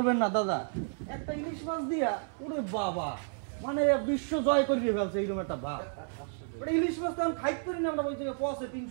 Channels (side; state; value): left; silent; 57 dB below the other